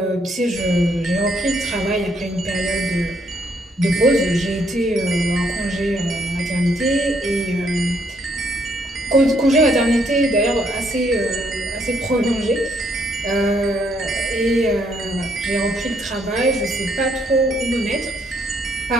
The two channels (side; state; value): both; normal; correlation 0.71